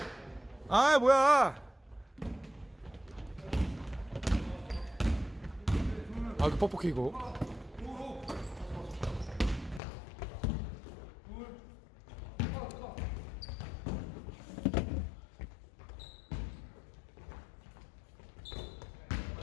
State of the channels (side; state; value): right; drops out; at 9.8 s